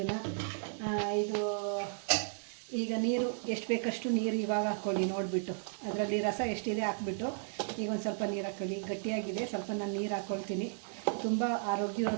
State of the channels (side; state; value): left; silent; digital silence